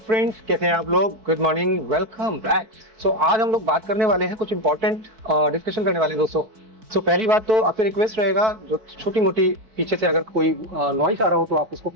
कैसे हैं आप लोग? Good morning, welcome back. So आज हम लोग बात करने वाले हैं, कुछ इंपॉर्टेंट डिस्कशन करने वाले हैं दोस्तों। सो पहली बात तो आपसे रिक्वेस्ट रहेगा, जो छोटी मोटी पीछे से अगर कोई नॉइस आ रहा हो तो आप उसको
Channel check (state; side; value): late; left; 4.5 ms